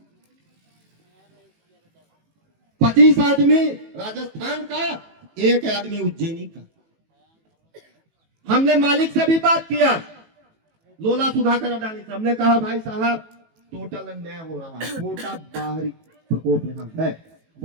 25 आदमी राजस्थान का, एक आदमी उज्जैनी का। हमने मालिक से भी बात किया, लोला सुधाकर अडानी से। हमने कहा भाई साहब टोटल अन्याय हो रहा है, छोटा बाहरी प्रकोप यहाँ है।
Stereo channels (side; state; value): left; late; 18 ms